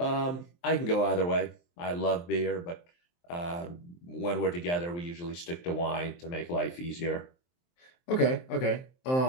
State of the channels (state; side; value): late; right; 23 ms